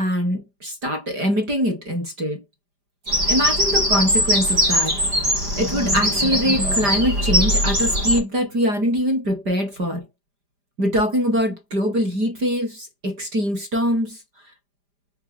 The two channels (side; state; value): left; late; 5.0 ms